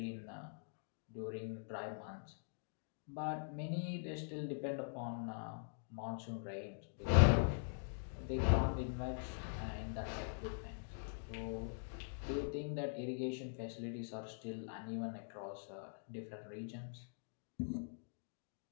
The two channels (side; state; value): right; silent; digital silence